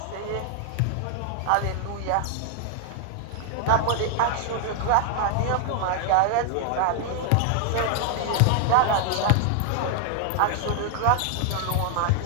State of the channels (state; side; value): different; both; correlation 0.00